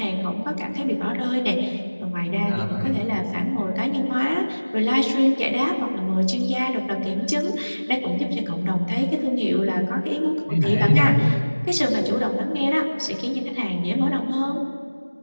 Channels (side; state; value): both; inverted; correlation -1.00